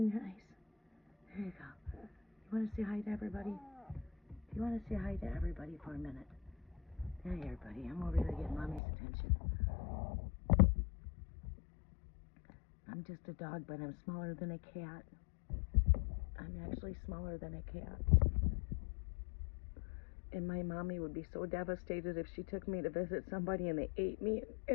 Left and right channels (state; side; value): drops out; right; at 8.8 s